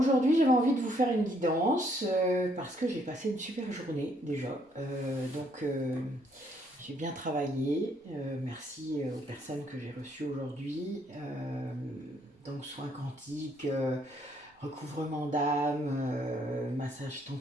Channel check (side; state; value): both; normal; correlation 0.69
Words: j'avais envie de vous faire une guidance parce que j'ai passé une super journée déjà. J'ai bien travaillé. Merci aux personnes que j'ai reçues aujourd'hui. Donc soins quantiques, recouvrement d'âme, massage